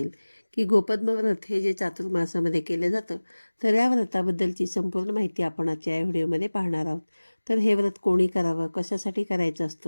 की गोपद्म व्रत हे जे चातुर्मासामध्ये केलं जातं, तर या व्रताबद्दलची संपूर्ण माहिती आपण आजच्या या व्हिडिओमध्ये पाहणार आहोत. तर हे व्रत कोणी करावं, कशासाठी करायचं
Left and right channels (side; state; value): both; inverted; correlation -1.00